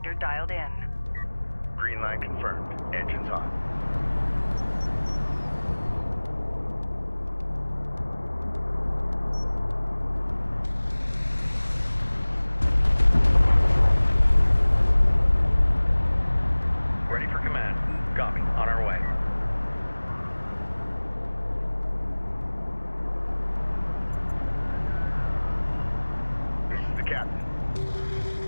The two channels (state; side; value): inverted; both; correlation -1.00